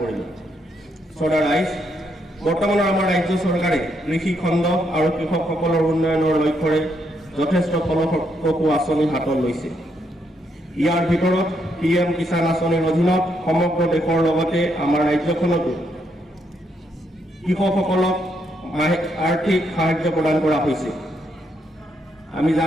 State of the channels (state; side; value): normal; both; correlation 0.77